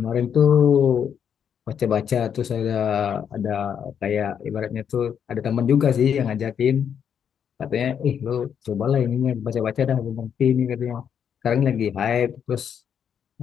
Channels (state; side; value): quieter; right; 8.1 dB